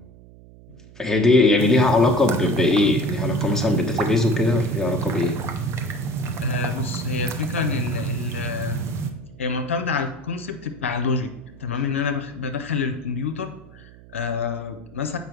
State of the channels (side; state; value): right; noise; hum, 21 dB below the sound